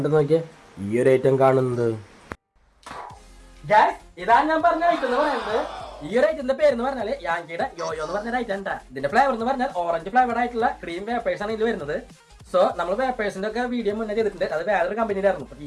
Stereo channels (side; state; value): both; identical; correlation 1.00